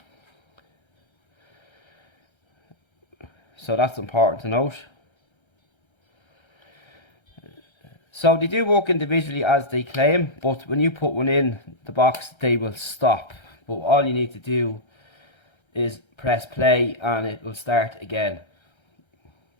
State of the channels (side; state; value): right; late; 1.3 ms